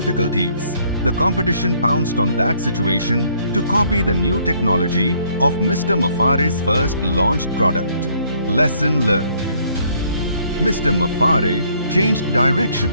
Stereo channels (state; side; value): inverted; both; correlation -0.65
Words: the competition pounced on that situation to copy the new technology of Mr. Muffare's first launched product. Lesson learned. Mr. Muffare changed direction